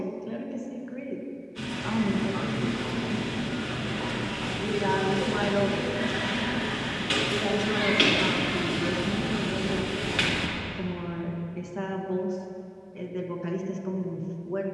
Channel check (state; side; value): identical; both; correlation 1.00